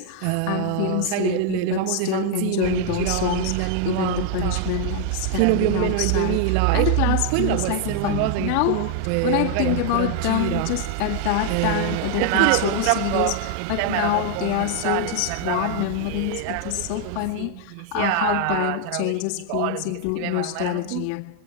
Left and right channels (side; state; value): both; different; correlation 0.00